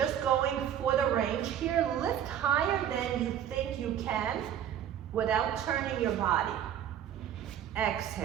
going for the range here. Lift higher than you think you can without turning your body.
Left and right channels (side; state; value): left; quieter; 10.0 dB